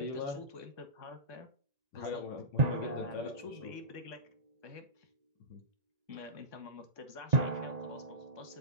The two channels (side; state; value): left; late; 1.2 ms